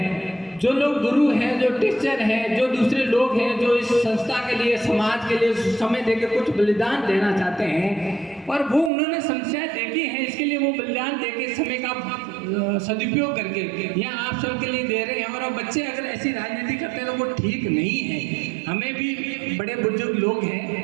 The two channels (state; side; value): drops out; left; at 8.9 s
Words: जो लोग गुरु हैं, जो टीचर हैं, जो दूसरे लोग हैं जो इस संस्था के लिए समाज के लिए समय देकर कुछ बलिदान देना चाहते हैं और वो उन्होंने समस्याएं देखी हैं, इसके लिए वो बलिदान देके समय का सदुपयोग करके यहाँ आप सबके लिए दे रहे हैं। और बच्चे अगर ऐसी राजनीति करते हैं तो वो ठीक नहीं है। हमें भी बड़े बुजुर्ग लोग